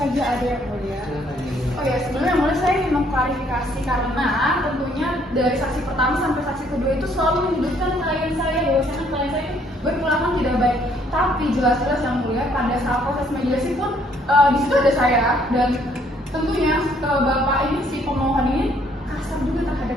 ada yang mulia. Oh ya, sebenarnya yang mulia saya ingin mengklarifikasi karena tentunya dari saksi pertama sampai saksi kedua itu selalu menyudutkan klien saya bahwasanya klien saya berperilaku tidak baik. Tapi jelas-jelas yang mulia pada saat proses mediasi pun di situ ada saya dan tentunya bapak ini si pemohon ini kasar juga terhadap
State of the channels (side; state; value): both; normal; correlation 0.65